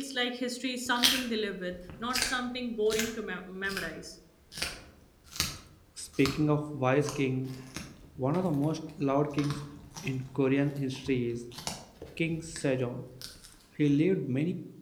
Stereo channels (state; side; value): identical; both; correlation 1.00